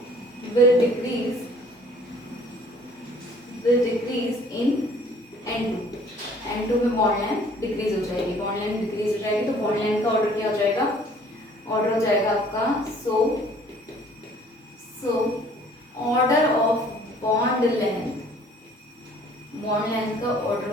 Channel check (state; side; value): normal; both; correlation 0.55